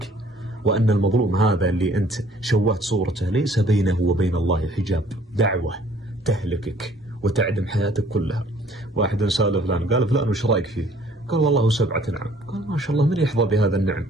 وأن المظلوم هذا اللي أنت شوهت صورته ليس بينه وبين الله حجاب، دعوة تهلكك وتعدم حياتك كلها. واحد سأل فلان، قال فلان وش رأيك فيه؟ قال والله 7 نعم. قال ما شاء الله من يحظى بهذا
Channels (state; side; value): normal; both; correlation 0.57